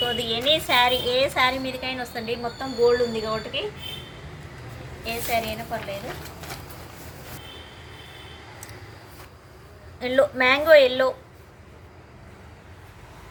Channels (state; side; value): identical; both; correlation 1.00